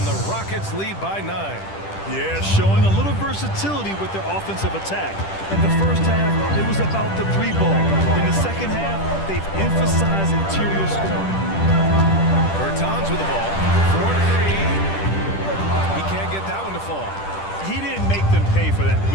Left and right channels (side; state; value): right; late; 10 ms